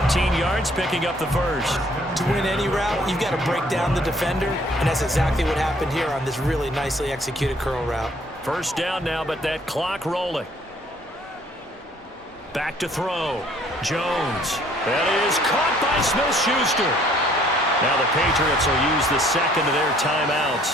yards, picking up the first. To win any route, you've got to break down the defender, and that's exactly what happened here on this really nicely executed curl route. First down now, but that clock rolling. Back to throw. Jones. That is caught by Smith-Schuster. Now the Patriots will use the second of their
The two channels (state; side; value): normal; both; correlation 0.60